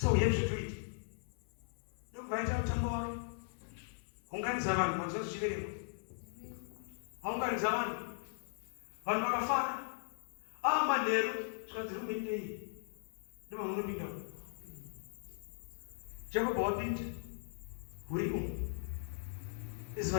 we have to do it. Ndokubvaita mutambo wake. Unganidza vanhu manzwa zvichiverengwa. Aunganidza vanhu. Vanhu vakafara. Manheru zvikanzi rumendei. Ndima munopinda. Jacob wapinda. Hurimo.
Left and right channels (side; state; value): right; silent; 52 dB below the other